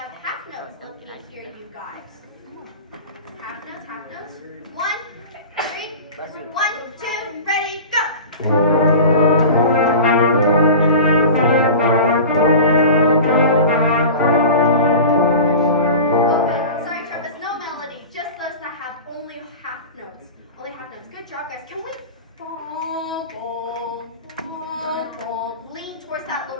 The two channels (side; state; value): both; inverted; correlation -0.34